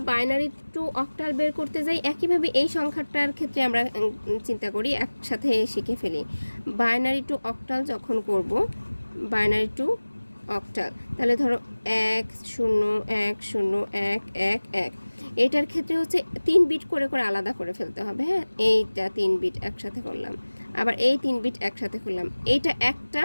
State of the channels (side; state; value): both; inverted; correlation -1.00